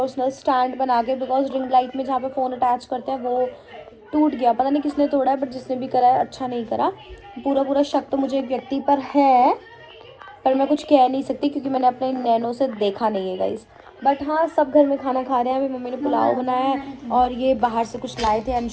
स्टैंड बना के, बिकॉज रिंग लाइट में जहाँ पे फ़ोन अटैच करते हैं वो टूट गया। पता नहीं किसने तोड़ा है, बट जिसने भी करा है अच्छा नहीं करा। पूरा शक तो मुझे एक व्यक्ति पर है, पर मैं कुछ कह नहीं सकती क्योंकि मैंने अपने नैनों से देखा नहीं है गाइस। बट हाँ, सब घर में खाना खा रहे हैं। अभी मम्मी ने पुलाव बनाया है और ये बाहर से कुछ लाए थे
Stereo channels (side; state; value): both; identical; correlation 1.00